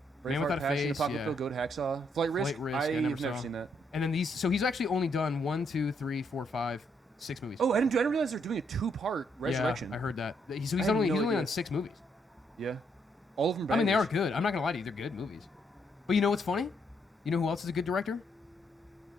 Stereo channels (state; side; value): normal; both; correlation 0.74